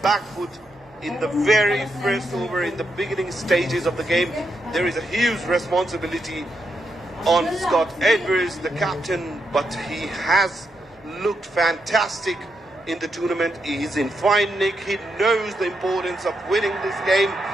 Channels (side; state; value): both; normal; correlation 0.82